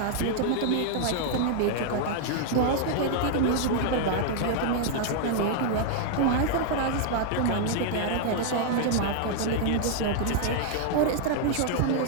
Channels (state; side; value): different; both; correlation -0.01